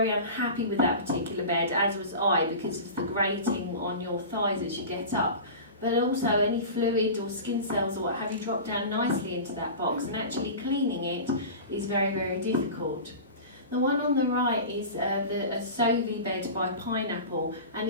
unhappy with that particular bed, as was I, because of the grating on your thighs as you get up. But also any fluid or skin cells or what have you drop down nicely into that box, and actually cleaning it is very, very difficult. The one on the right is a Sovi bed by Pineapple,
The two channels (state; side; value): inverted; both; correlation -0.32